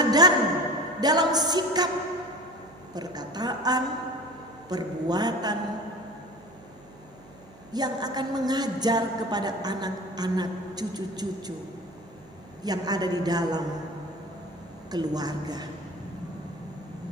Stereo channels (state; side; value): noise; right; hum, 24 dB below the sound